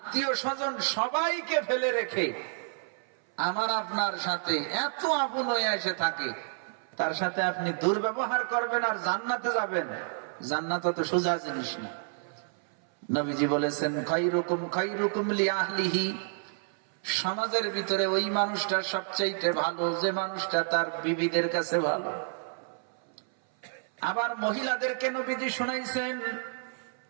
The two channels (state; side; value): silent; left; 58 dB below the other